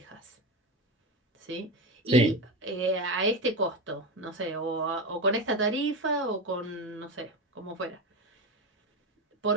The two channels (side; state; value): both; normal; correlation 0.19